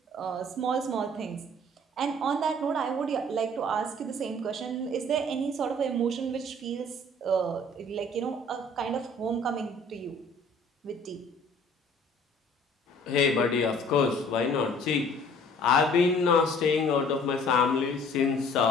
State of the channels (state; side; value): normal; both; correlation 0.54